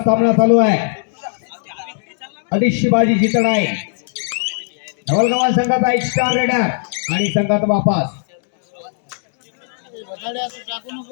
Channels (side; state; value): right; silent; digital silence